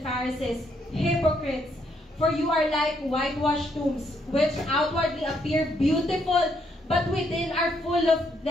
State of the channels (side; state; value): both; normal; correlation 0.73